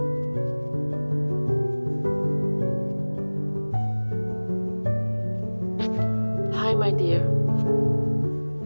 Hi, my dear.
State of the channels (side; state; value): both; inverted; correlation -1.00